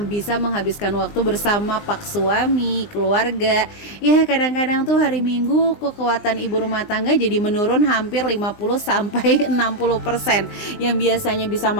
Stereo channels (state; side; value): late; right; 20 ms